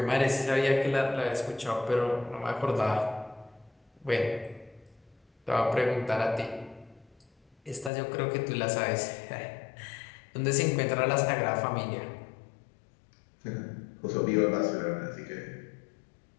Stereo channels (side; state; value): right; drops out; at 7.9 s